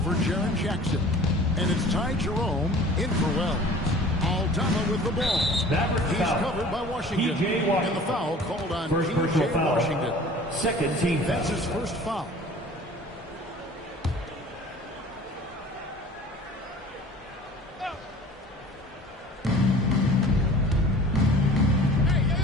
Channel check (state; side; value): normal; both; correlation 0.45